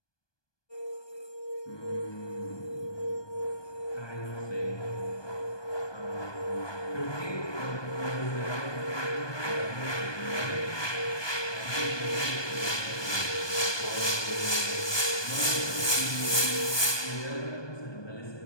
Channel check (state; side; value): late; right; 1.2 ms